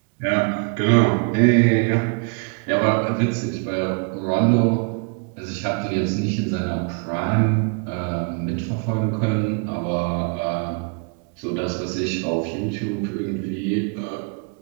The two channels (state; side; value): quieter; left; 36.5 dB